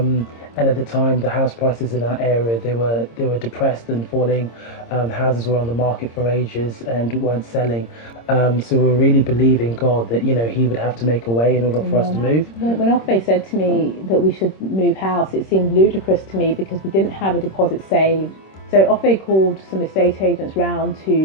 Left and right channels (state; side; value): late; right; 26 ms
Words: And at the time, the house prices in our area, they were depressed and falling. Houses were on the market for ages and weren't selling. So we were really believing God that, He would have to make a way in order for us to move. When Ofei said to me that we should move house, it seemed ludicrous to me because we didn't have a deposit saved. So Ofei called some estate agents round